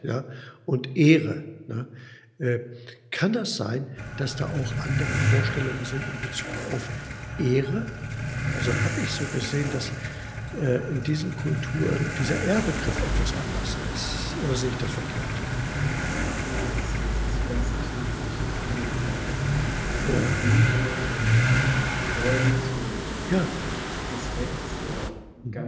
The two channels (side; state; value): both; identical; correlation 1.00